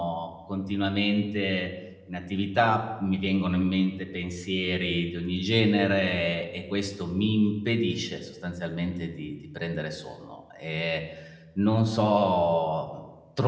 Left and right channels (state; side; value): identical; both; correlation 1.00